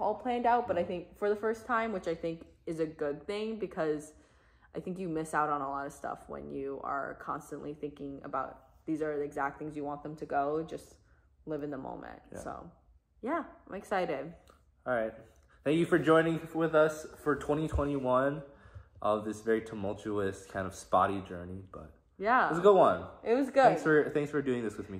planned out, but I think for the first time, which I think is a good thing, because I think you miss out on a lot of stuff when you are constantly thinking about these are the exact things you want them to go. Just live in the moment. So yeah, I'm excited. All right. Thank you for joining with us for 2021 of this very tumultuous kind of spotty journey, but it was a good one. It was good. Thanks for doing this with me,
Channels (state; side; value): identical; both; correlation 1.00